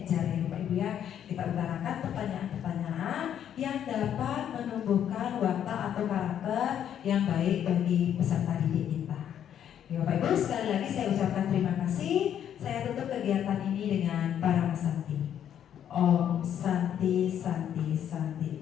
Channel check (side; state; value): right; quieter; 9.7 dB